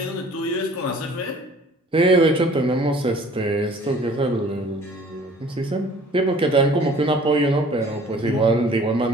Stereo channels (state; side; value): normal; both; correlation 0.52